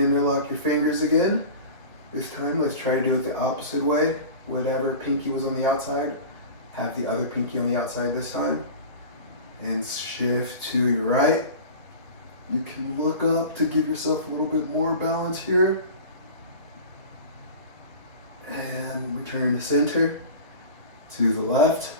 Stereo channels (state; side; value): inverted; both; correlation -0.35